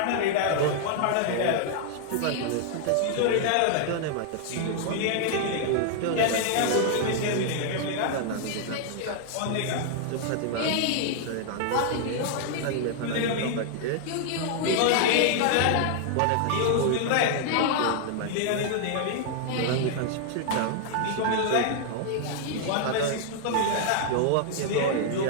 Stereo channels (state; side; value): different; both; correlation 0.00